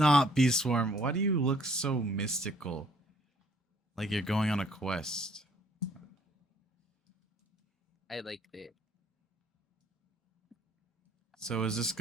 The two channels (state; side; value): normal; both; correlation 0.61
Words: Bee Swarm. Why do you look so mystical? Like you're going on a quest. I liked it. So is this